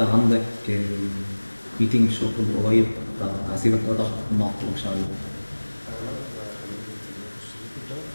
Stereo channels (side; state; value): both; inverted; correlation -1.00